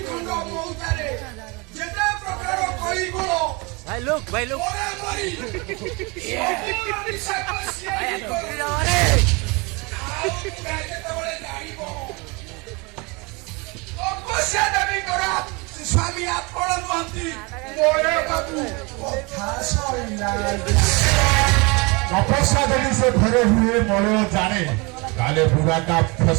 ଖଣ୍ଡ ମଉତାରେ ଯେତେ ପ୍ରକାର କଳିଗୁଣ ଭାଇ ଲୋକ ମରାମରି ସବୁର ନିଶାକୁ ସିଏ କରେ। ଆଉ ଯେତେବେଳେ ଜାଣିବ ତପସ୍ୟା ଦେବୀଙ୍କର ସ୍ୱାମୀ ଆପଣ ନୁହନ୍ତି ମଳେ ବାବୁ କଥା ସରିଲା। ତପସ୍ୟା ଯଦି ସେ ଘରେ ହୁଏ ମଳୟ ଜାଣେ ତାହେଲେ ବୁଢ଼ାଟା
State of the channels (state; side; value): quieter; left; 27.8 dB